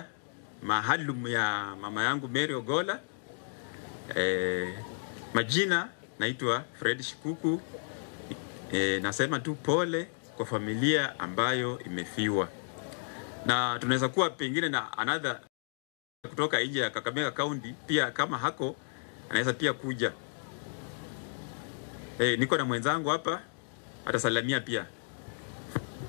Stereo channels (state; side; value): silent; right; digital silence